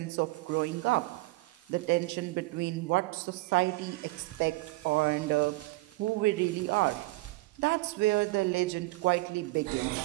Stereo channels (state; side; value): quieter; left; 21.6 dB